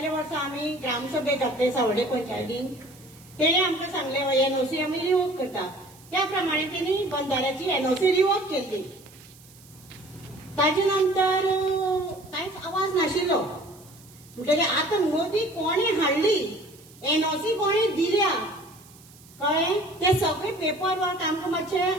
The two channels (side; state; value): right; noise; hiss, 24 dB below the sound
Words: वर्सा आमी ग्रामसभेक घातले सावड्डे पंचायतीन. तेणे आमकां सांगले एनओसी आमी रिवोक करता. त्या प्रमाणे तेणी बंधाऱ्याची एनओसी रिवोक केल्ली. ताजे नंतर कांयच आवाज नाशिल्लो. म्हणटकीर आतां मोदी कोणी हाडली एनओसी कोणी दिल्या कळ्ळें. ते सगळे पेपर वर्क आमकां